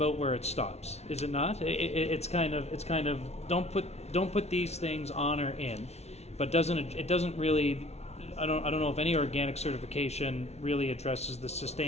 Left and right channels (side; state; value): right; late; 0.31 ms